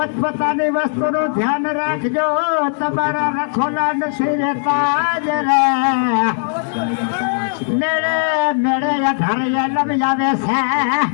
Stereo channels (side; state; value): right; silent; 68 dB below the other